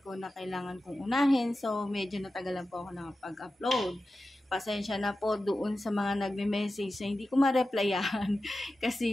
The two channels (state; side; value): normal; both; correlation 0.93